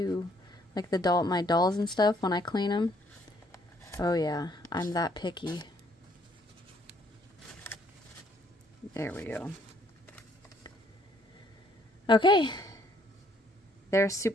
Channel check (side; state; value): both; normal; correlation 0.66